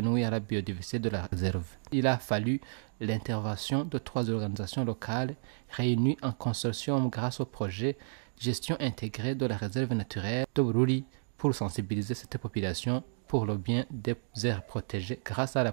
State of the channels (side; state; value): left; silent; digital silence